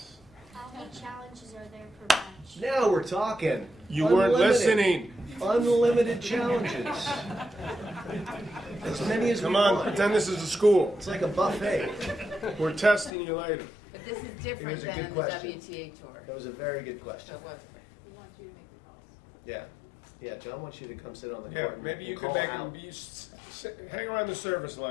How many challenges are there per match? Now we're talking. You weren't listening. Unlimited challenges. As many as Come we on, want. pretend this is a school. It's like a buffet. We're testing you later. But this is It different was a than good in the question. WTA tour. That was a very good question. So it was. We want you to make the calls. Yeah. Yeah, John wants you to come sit on the Yeah, court and maybe you and could call make out. him hang around the service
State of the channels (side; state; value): right; drops out; at 13.1 s